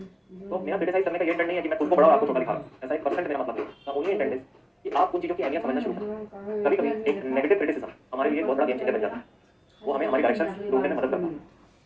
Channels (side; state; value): both; identical; correlation 1.00